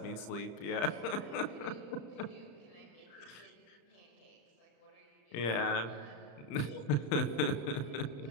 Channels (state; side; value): late; right; 34 ms